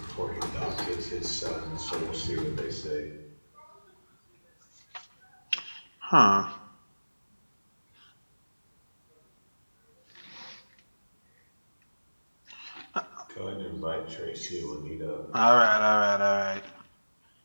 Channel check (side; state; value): both; inverted; correlation -1.00